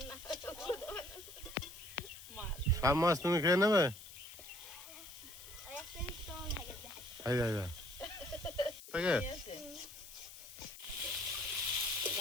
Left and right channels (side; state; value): left; noise; hiss, 15 dB below the sound